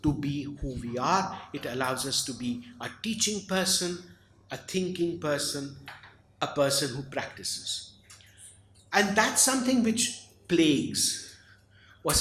to be who we are. It allows us to be a teaching person, a thinking person, a person who practices. And that's something which plagues or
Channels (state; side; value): identical; both; correlation 1.00